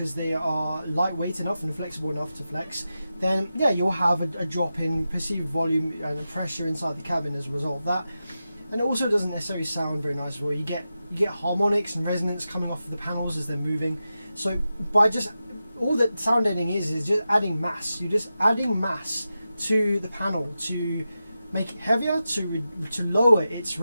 they are lightweight enough and flexible enough to flex, then yeah, you'll have a drop in perceived volume and pressure inside the cabin as a result of that. And it also doesn't necessarily sound very nice as well. You get harmonics and resonance coming off of the panels as they're moving. So by just all that sound deadening is just adding mass. You're just adding mass to the panel to make it heavier, to lower its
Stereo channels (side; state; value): both; inverted; correlation -0.91